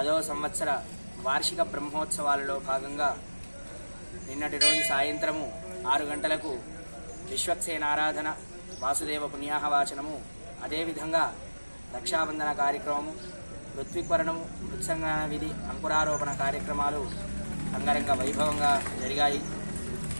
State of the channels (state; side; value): inverted; both; correlation -1.00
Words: సంవత్సర వార్షిక బ్రహ్మోత్సవాలలో భాగంగా నిన్నటి రోజు సాయంత్రము 6 గంటలకు విశ్వక్సేనారాధన, వాసుదేవ పుణ్యాహవాచనము, అదేవిధంగా రక్షాబంధన కార్యక్రమము, ఋత్విక్వరణము, మృత్సంగన విధి, అంకురారోపణ కార్యక్రమాలు అంగరంగ వైభవంగా జరిగాయి.